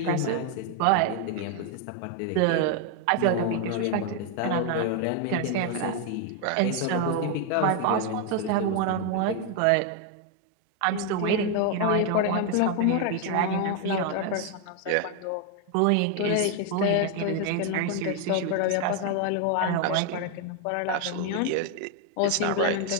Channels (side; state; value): both; different; correlation 0.01